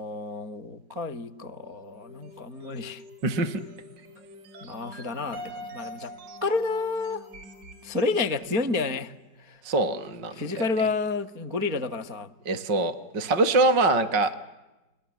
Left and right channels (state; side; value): late; left; 5.3 ms